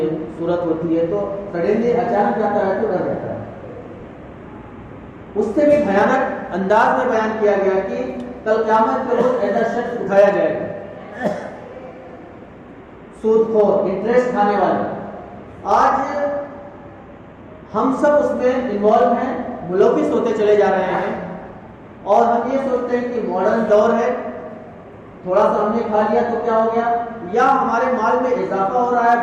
صورت ہوتی ہے، تو سڈنلی اچانک جاتا ہے تو ڈر جاتا ہے۔ اس سے بھی بھیانک انداز میں بیان کیا گیا کہ کل قیامت کے روز ایسا شخص اٹھایا جائے گا، سود خور، انٹرسٹ کھانے والے۔ آج ہم سب اس میں انوالو ہیں، ملوث ہوتے چلے جا رہے ہیں، اور ہم یہ سوچتے ہیں کہ ماڈرن دور ہے، تھوڑا سا ہم نے کھا لیا تو کیا ہو گیا، یا ہمارے مال میں اضافہ ہو رہا ہے،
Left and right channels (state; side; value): identical; both; correlation 1.00